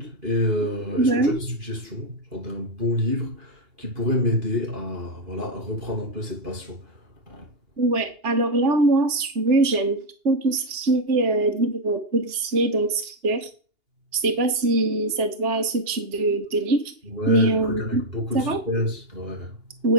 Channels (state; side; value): late; left; 2.8 ms